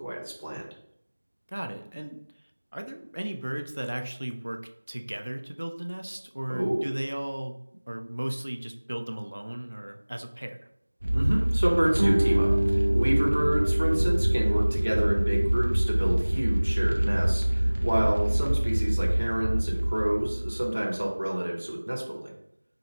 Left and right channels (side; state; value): both; inverted; correlation -1.00